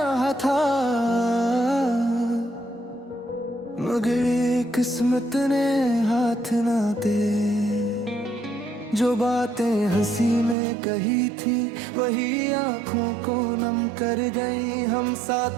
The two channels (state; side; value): drops out; left; at 10.6 s